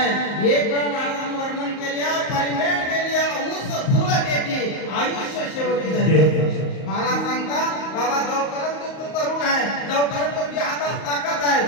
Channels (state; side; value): late; right; 38 ms